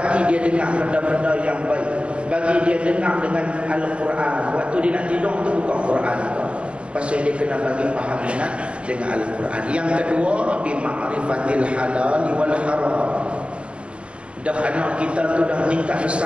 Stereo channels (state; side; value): late; left; 0.058 ms